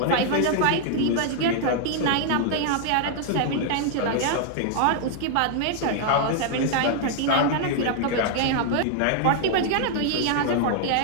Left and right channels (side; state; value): both; different; correlation 0.00